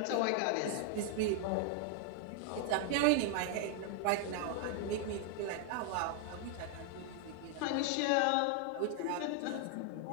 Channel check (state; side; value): different; both; correlation 0.00